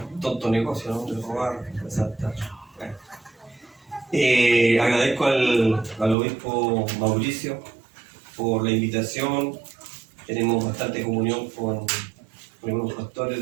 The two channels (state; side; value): drops out; left; at 6.2 s